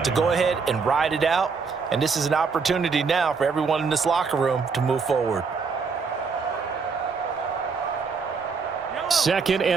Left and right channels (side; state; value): left; quieter; 5.2 dB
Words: to go ahead and ride it out. And this is an opportunity now for everyone in this locker room to move forward. Second